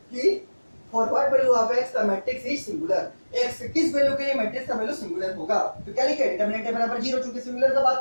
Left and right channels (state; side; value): inverted; both; correlation -1.00